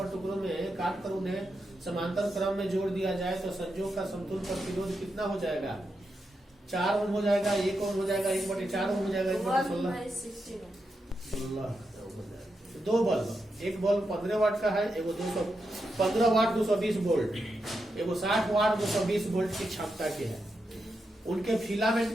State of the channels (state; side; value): normal; both; correlation 0.86